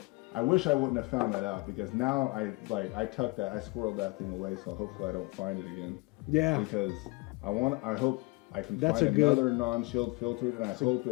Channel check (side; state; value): right; quieter; 26.2 dB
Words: I wish I wouldn't have found that out because now I tucked that, I squirreled that thing away, so hopefully I don't find it again. Yeah. Because I hope I can find another non-chilled filtered, and I hope